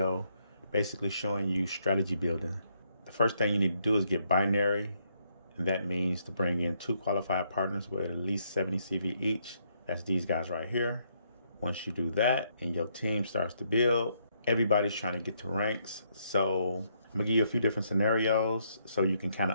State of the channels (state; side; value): inverted; both; correlation -0.74